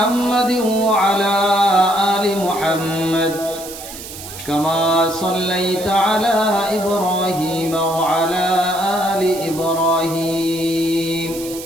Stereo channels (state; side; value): noise; right; hiss, 12 dB below the sound